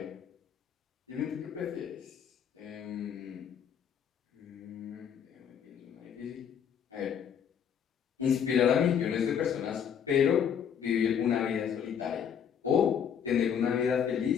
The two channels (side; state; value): right; quieter; 8.0 dB